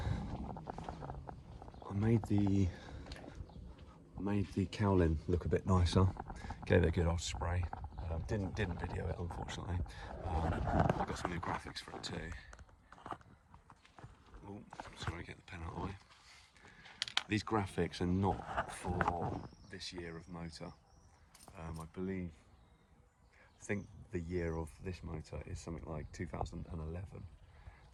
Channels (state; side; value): identical; both; correlation 1.00